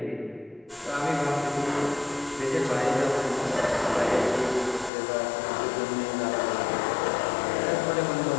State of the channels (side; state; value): right; drops out; at 4.9 s